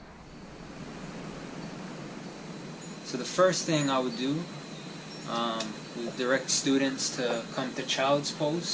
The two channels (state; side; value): identical; both; correlation 1.00